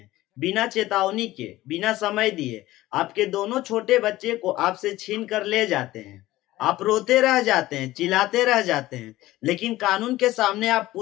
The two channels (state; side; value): quieter; right; 16.6 dB